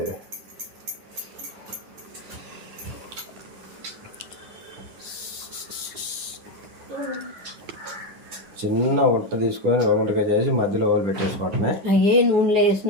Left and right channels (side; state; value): left; late; 9.8 ms